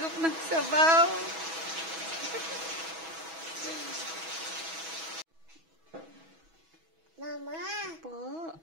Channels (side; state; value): left; late; 6.2 ms